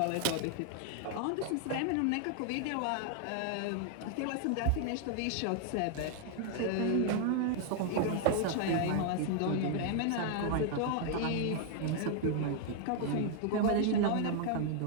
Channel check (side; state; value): both; different; correlation 0.00